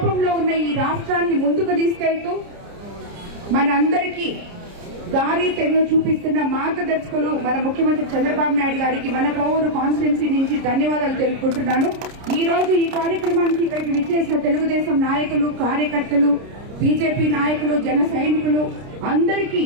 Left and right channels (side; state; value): left; late; 30 ms